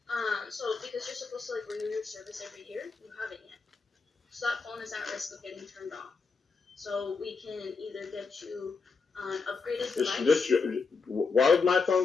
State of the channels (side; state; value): right; quieter; 4.7 dB